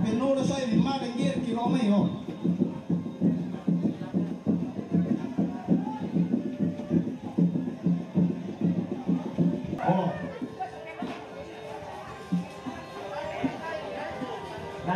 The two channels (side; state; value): both; identical; correlation 1.00